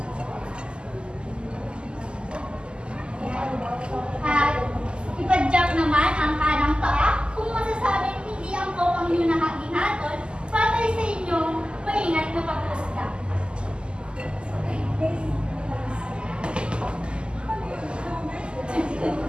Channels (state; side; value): late; left; 0.050 ms